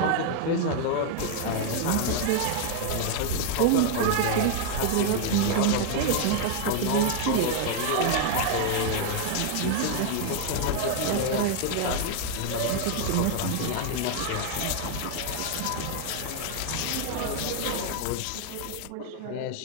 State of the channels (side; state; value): both; different; correlation 0.00